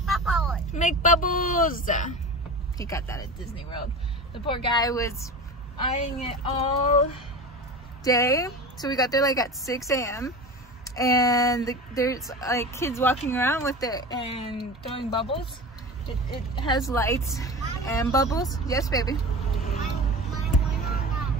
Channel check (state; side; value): normal; both; correlation 0.31